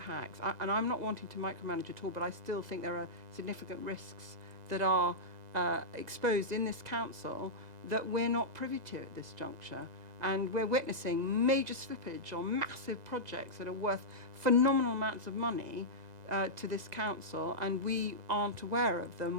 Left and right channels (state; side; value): late; left; 2.0 ms